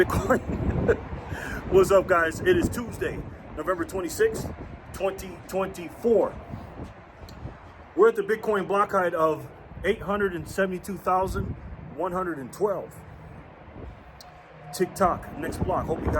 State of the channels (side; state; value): both; identical; correlation 1.00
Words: What's up, guys? It is Tuesday, November 26th, 2024. We're at the Bitcoin block height of 872,112. TikTok, next block. Hope you